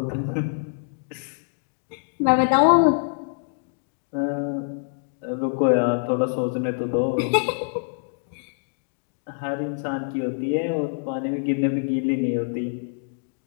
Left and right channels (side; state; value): right; silent; digital silence